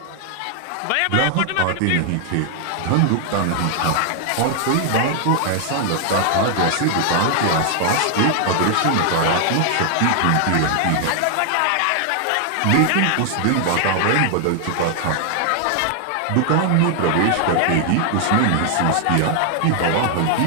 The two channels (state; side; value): different; both; correlation 0.00